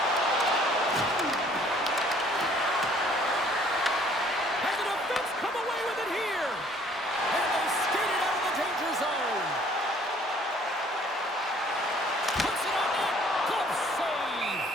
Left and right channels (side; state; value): both; normal; correlation 0.58